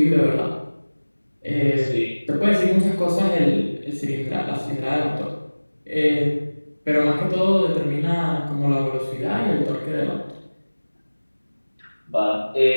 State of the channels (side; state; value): both; inverted; correlation -1.00